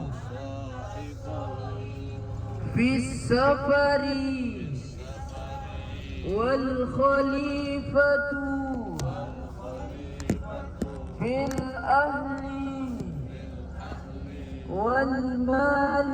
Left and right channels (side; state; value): both; identical; correlation 1.00